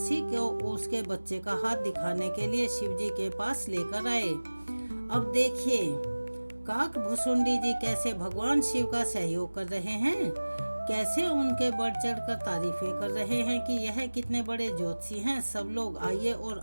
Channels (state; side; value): inverted; both; correlation -1.00